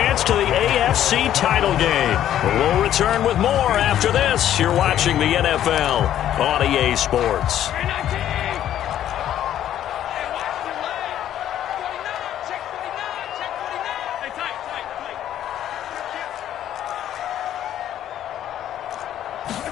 to the AFC title game. We'll return with more after this. You're watching the NFL on EA Sports.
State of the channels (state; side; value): quieter; right; 11.3 dB